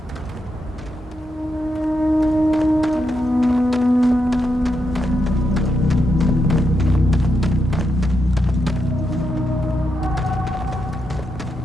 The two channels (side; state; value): both; normal; correlation 0.83